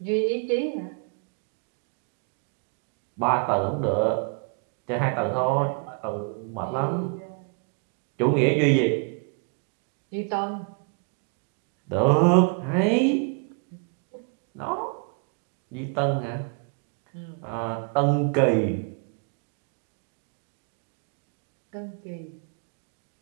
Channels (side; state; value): left; quieter; 37.5 dB